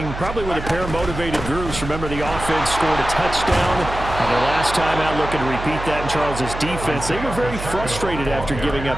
probably with a pair of motivated groups. Remember, the offense scored a touchdown. And their last time out, looking to repeat that in Charles's defense. They were very frustrated after giving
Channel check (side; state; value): right; noise; hum, 9 dB below the sound